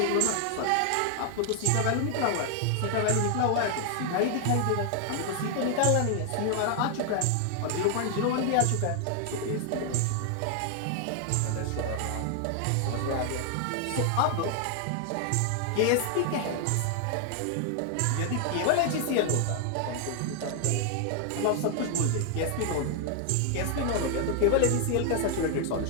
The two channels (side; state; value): both; different; correlation 0.00